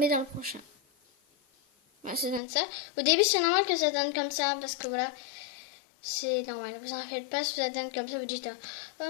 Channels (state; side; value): drops out; right; at 2.4 s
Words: dans le prochain. Voilà, ça donne ça. Au début, c'est normal que ça donne comme ça. Parce que voilà, c'est normal. Vous en faites pas. Si ça donne comme ça, vous dites, oh